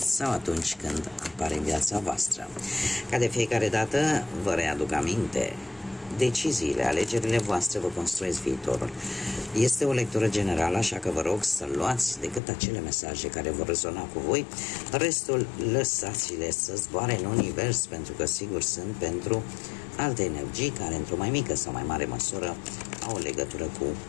atunci când apare în viața voastră. Ca de fiecare dată, vă readuc aminte, deciziile, alegerile voastre vă construiesc viitorul. Este o lectură generală, așa că vă rog să luați decât acele mesaje care vor rezona cu voi, restul lăsați-le să zboare în univers, pentru că sigur sunt pentru alte energii care într-o mai mică sau mai mare măsură au o legătură cu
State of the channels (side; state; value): right; drops out; at 12.4 s